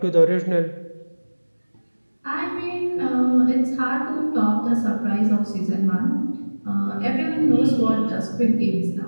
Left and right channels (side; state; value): both; inverted; correlation -1.00